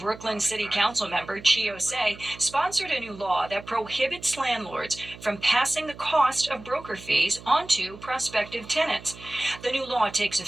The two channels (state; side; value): noise; right; hum, 17 dB below the sound